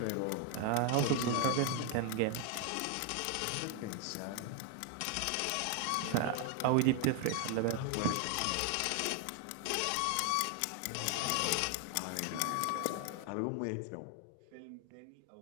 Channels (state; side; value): different; both; correlation 0.00